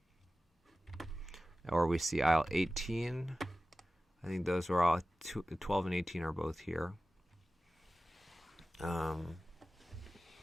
Or we see IL-18. I think those are all 12 and 18 are both here.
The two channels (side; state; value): both; normal; correlation 0.96